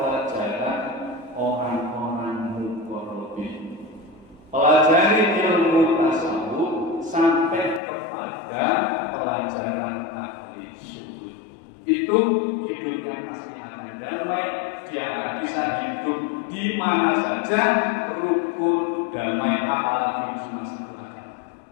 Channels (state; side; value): drops out; right; at 7.8 s